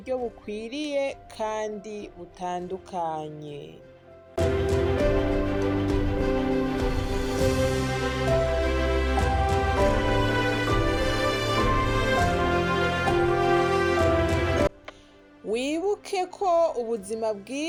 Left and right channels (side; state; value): both; identical; correlation 1.00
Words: bukwiriye kandi butandukanye. Wibuke ko ubuzima